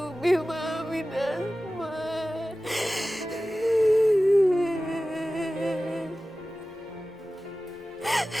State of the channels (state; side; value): normal; both; correlation 0.96